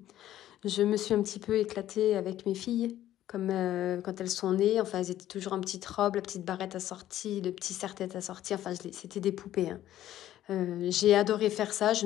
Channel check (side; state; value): right; quieter; 12.9 dB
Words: je me suis un petit peu éclatée avec mes filles, comme quand elles sont nées. Enfin, elles étaient toujours en petite robe, la petite barrette assortie, le petit serre-tête assorti. Enfin, c'était des poupées. Hein. J'ai adoré faire ça, je